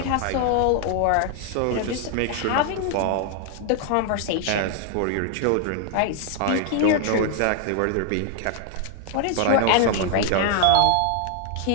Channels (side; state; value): both; different; correlation 0.00